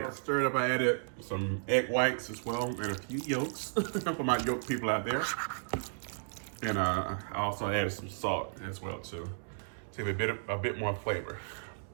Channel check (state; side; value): silent; left; digital silence